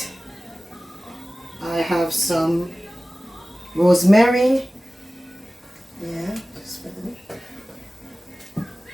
I have some rosemary. Yeah, just put it.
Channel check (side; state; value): both; normal; correlation 0.97